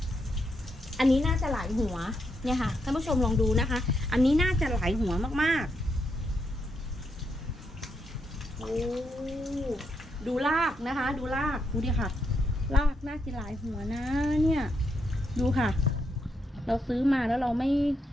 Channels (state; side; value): normal; both; correlation 0.80